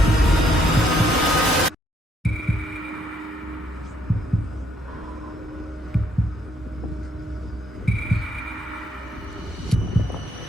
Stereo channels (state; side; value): normal; both; correlation 0.70